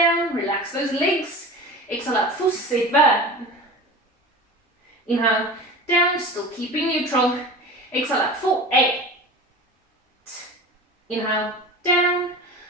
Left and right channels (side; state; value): both; normal; correlation 0.35